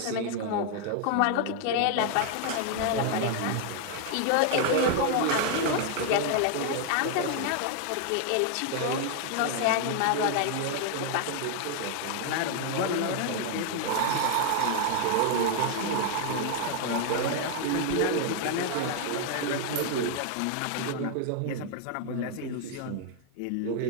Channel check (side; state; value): both; different; correlation 0.00